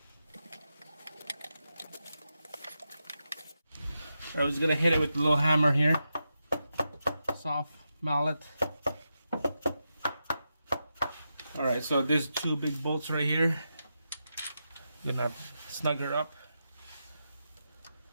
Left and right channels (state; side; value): inverted; both; correlation -0.88